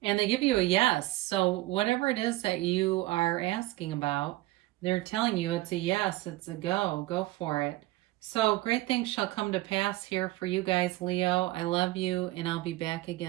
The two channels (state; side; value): quieter; left; 18.3 dB